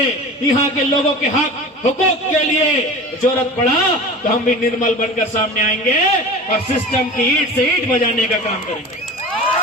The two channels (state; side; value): normal; both; correlation 0.35